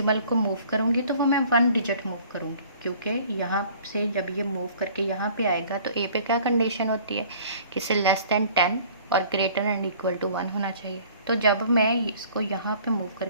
को मूव करूंगी तो वो मैं 1 डिजिट मूव करूंगी, क्योंकि यहाँ से जब ये मूव करके यहाँ पे आएगा तो ए पे क्या कंडीशन होती है कि इसे लेस देन 10 और ग्रेटर एंड इक्वल टू 1 होना चाहिए। तो जब मैं इसको यहाँ पे मूव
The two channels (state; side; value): inverted; both; correlation -0.52